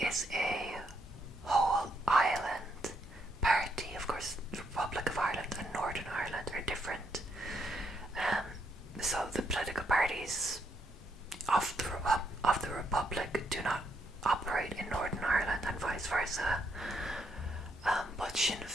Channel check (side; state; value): both; normal; correlation 0.75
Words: is a whole island party. Of course, the Republic of Ireland and Northern Ireland are different. So the political parties of the Republic do not operate in Northern Ireland and vice versa. But Sinn